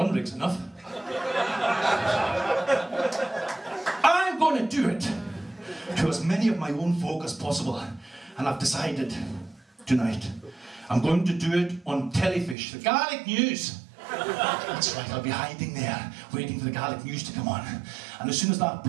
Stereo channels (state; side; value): drops out; left; at 12.6 s